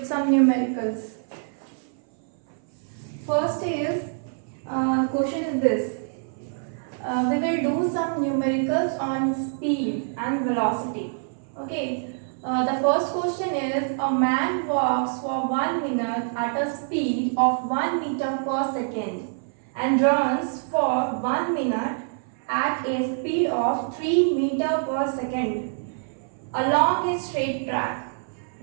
some numericals. First is question is this. We will do some numericals on speed and velocity. Okay. The first question is a man walks for 1 minute at a speed of 1 meter per second and runs for 1 minute at a speed of 3 meter per second along a straight track.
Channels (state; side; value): silent; left; 59 dB below the other